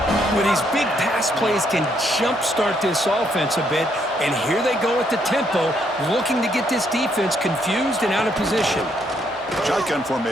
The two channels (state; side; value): normal; both; correlation 0.72